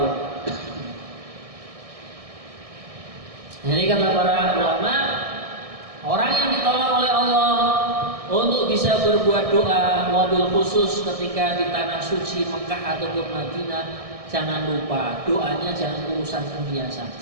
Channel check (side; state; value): left; late; 1.6 ms